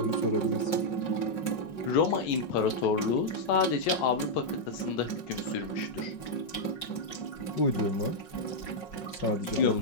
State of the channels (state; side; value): late; right; 5.4 ms